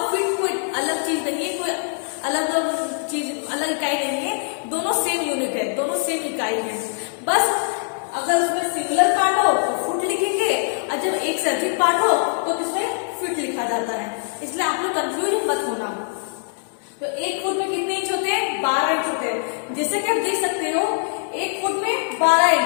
फीट कोई अलग चीज नहीं है, कोई अलग चीज, अलग इकाई नहीं है। दोनों सेम यूनिट है, दोनों सेम इकाई है। बस अगर उसमें सिंगुलर पार्ट हो तो फुट लिखेंगे और जब एक से अधिक पार्ट हो तो किसमें फीट लिखा जाता है। इसलिए आप लोग कंफ्यूज मत होना। तो एक फुट में कितने इंच होते हैं? 12 इंच होते हैं। जैसे कि आप देख सकते हो एक फुट में 12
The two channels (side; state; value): right; silent; 64 dB below the other